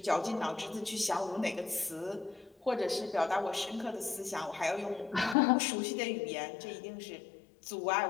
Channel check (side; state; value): right; drops out; at 5.4 s